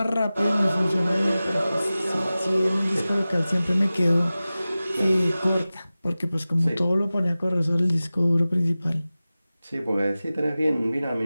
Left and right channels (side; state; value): both; inverted; correlation -0.96